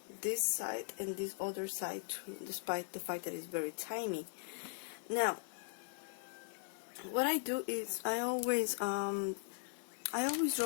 this side and this other side too, despite the fact that it's very tiny. Now what I do is I always draw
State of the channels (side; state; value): right; silent; 51 dB below the other